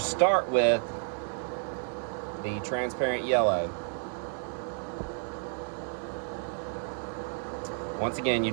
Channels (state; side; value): silent; left; 57 dB below the other